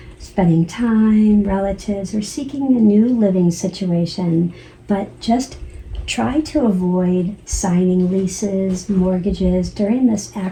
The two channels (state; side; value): identical; both; correlation 1.00